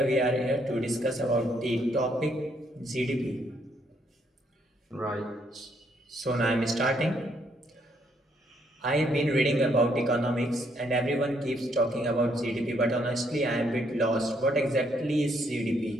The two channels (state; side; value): normal; both; correlation 0.71